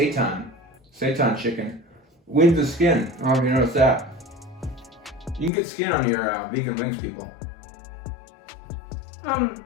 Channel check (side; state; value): right; drops out; at 5.5 s